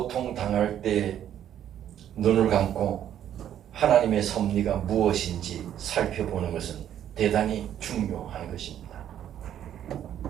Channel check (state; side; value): quieter; left; 10.5 dB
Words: 당할 때 눈을 감고 하나님의 섭리가 무엇인지 살펴보는 것은 대단히 중요한 것입니다.